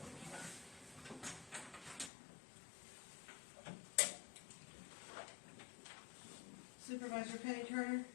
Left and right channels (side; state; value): right; drops out; at 2.1 s